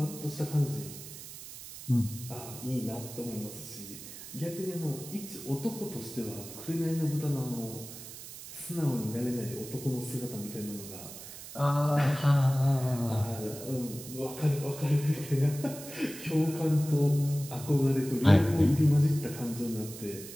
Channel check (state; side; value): noise; right; hiss, 13 dB below the sound